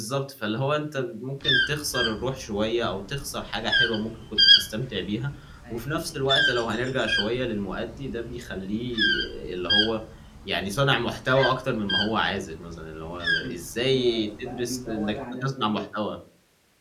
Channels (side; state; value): both; identical; correlation 1.00